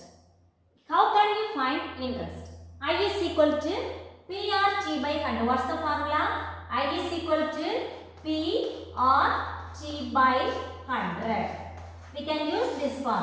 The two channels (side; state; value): both; identical; correlation 1.00